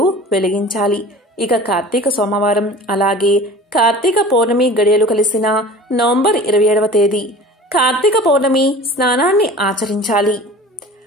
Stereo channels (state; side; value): normal; both; correlation 0.41